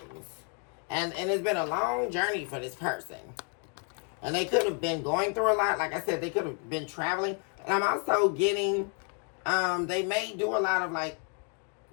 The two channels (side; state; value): right; quieter; 39.9 dB